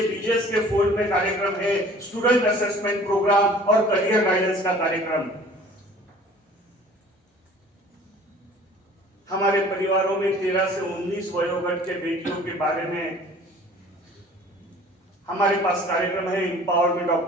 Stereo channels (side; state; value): both; normal; correlation 0.49